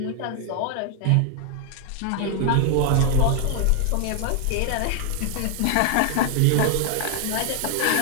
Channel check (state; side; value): different; both; correlation 0.00